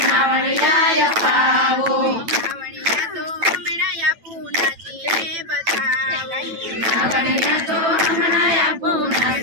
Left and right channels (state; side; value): late; left; 9.0 ms